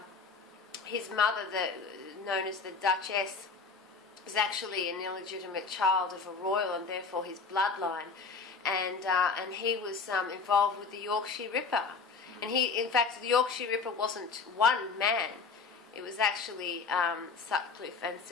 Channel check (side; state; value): right; quieter; 4.8 dB